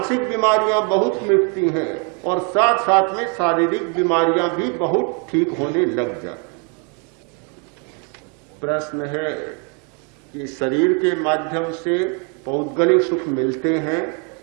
बीमारियां बहुत मिटती हैं, और साथ साथ में शारीरिक बीमारियां भी बहुत ठीक होने लग जाती। प्रश्न है कि शरीर के माध्यम से पौद्गलिक सुख मिलते हैं,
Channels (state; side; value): quieter; left; 33.8 dB